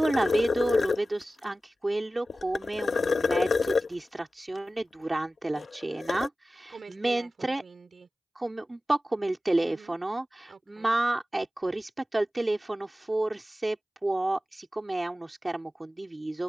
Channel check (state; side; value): normal; both; correlation 0.95